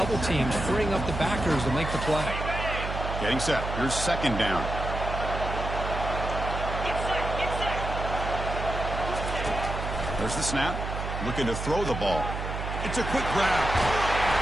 teams, freeing up the backers to make the play. Getting set. Here's second down. There's the snap. Looking to throw the ball. It's a quick grab.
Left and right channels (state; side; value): noise; right; hum, 5 dB below the sound